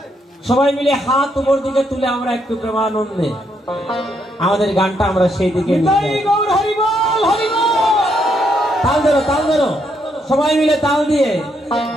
সবাই মিলে হাত উপর দিকে তুলে আমরা একটু প্রেমানন্দে আমাদের গানটা আমরা সেই দিকে তাল ধরো, তাল ধরো, সবাই মিলে তাল দিয়ে।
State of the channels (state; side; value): normal; both; correlation 0.76